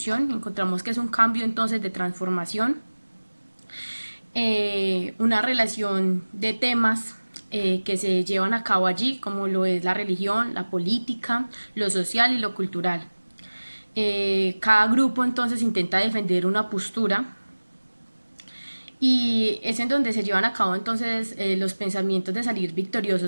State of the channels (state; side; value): inverted; both; correlation -1.00